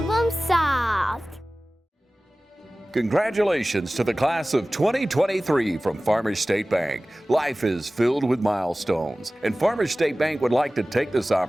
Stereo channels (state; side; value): normal; both; correlation 0.98